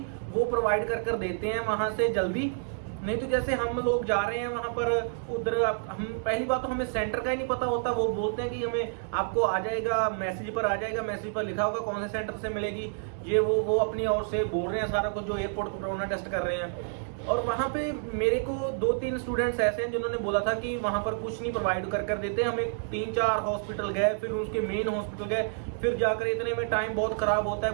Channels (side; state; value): left; silent; digital silence